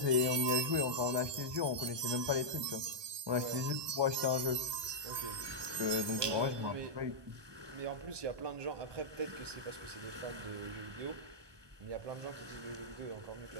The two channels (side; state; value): left; late; 1.2 ms